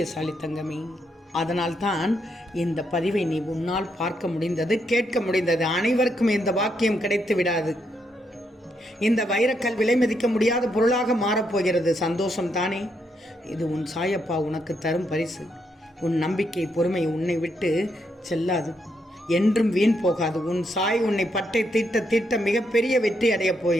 தங்கமே. அதனால்தான் இந்த பதிவை நீ உன்னால் பார்க்க முடிந்தது, கேட்க முடிந்தது. அனைவருக்கும் இந்த பாக்கியம் கிடைத்து விடாது. இந்த வைரக்கல் விலை மதிக்க முடியாத பொருளாக மாறப்போகிறது. சந்தோஷம் தானே? இது உன் சாயப்பா உனக்கு தரும் பரிசு. உன் நம்பிக்கை, பொறுமை உன்னை விட்டு செல்லாது, என்றும் வீண் போகாது. உன் சாய் உன்னை பட்டை தீட்ட தீட்ட மிகப்பெரிய வெற்றி அடையப்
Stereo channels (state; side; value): normal; both; correlation 0.78